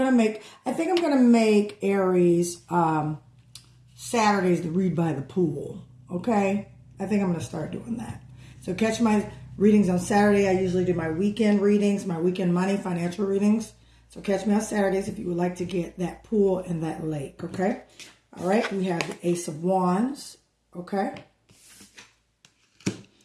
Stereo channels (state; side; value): identical; both; correlation 1.00